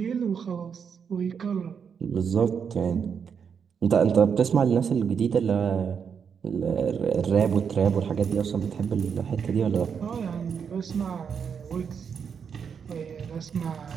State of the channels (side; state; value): left; quieter; 6.8 dB